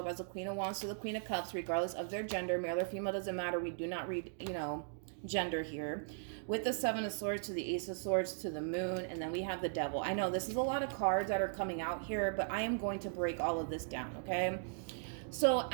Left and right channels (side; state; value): left; silent; digital silence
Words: as a Queen of Wands to the Queen of Cups, regardless of their gender, male or female, doesn't matter. We do not read, gender here. With the Seven of Swords to the Ace of Swords to the Moon, and then we have the Devil. I know this is a lot of cards that are coming out here, but I am going to break all of this down, okay? So